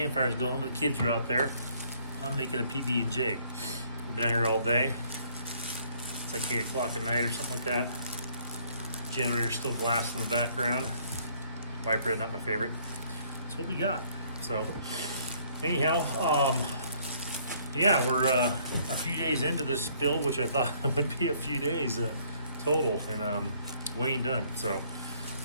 going, but the kids are out there. I'm making a PB&J. I've been out here all day. It's like 8 o'clock at night or something like that. Generator's still blasting in the background. White bread, not my favorite. That's what we got. So, anyhow, yeah, we're a few days into this build, which I thought would be a few days total, and we ain't done. So,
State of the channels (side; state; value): both; inverted; correlation -0.63